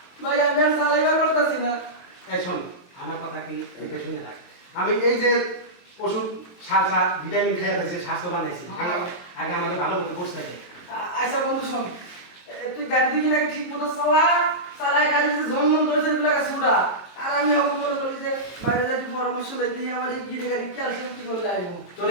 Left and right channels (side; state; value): right; late; 22 ms